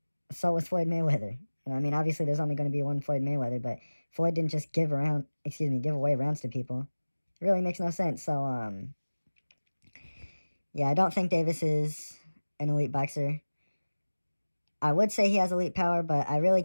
so was Floyd Mayweather. And I mean, obviously, there's only going to be one Floyd Mayweather, but Floyd didn't just give away rounds to people. It really makes no sense. So, yeah, I don't think Davis is an elite boxer. I would say he has elite power, but I really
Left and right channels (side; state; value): both; inverted; correlation -1.00